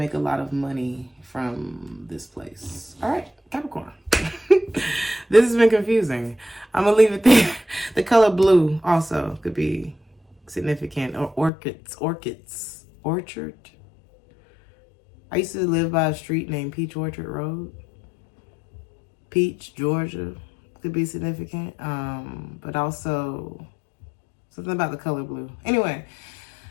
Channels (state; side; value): drops out; right; at 11.5 s